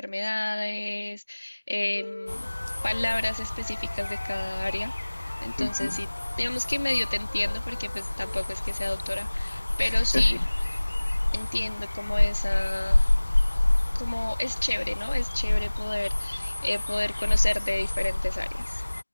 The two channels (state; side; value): inverted; both; correlation -1.00